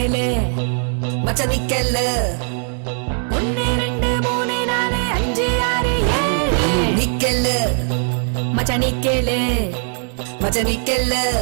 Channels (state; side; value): silent; left; 56 dB below the other